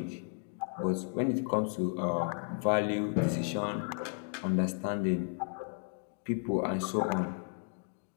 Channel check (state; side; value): silent; right; 55 dB below the other